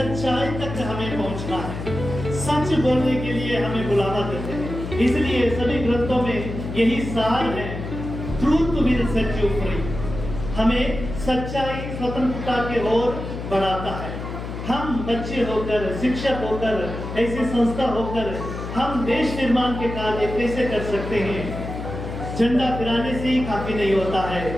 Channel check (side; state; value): left; noise; hum, 7 dB below the sound